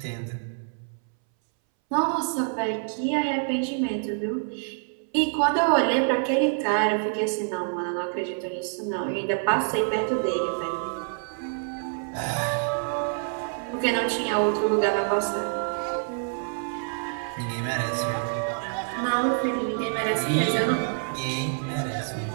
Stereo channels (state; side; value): silent; left; 60 dB below the other